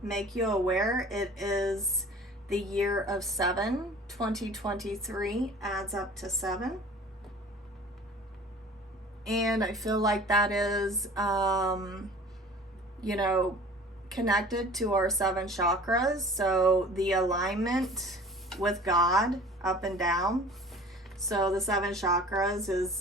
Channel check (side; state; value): both; normal; correlation 0.45